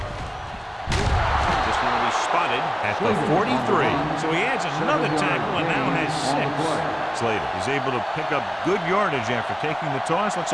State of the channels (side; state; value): both; identical; correlation 1.00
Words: This one will be spotted at the 43. So he adds another tackle and now has 6. Slater is able to pick up good yardage after taking the toss,